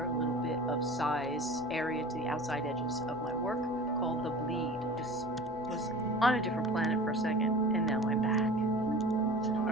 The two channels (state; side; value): normal; both; correlation 0.39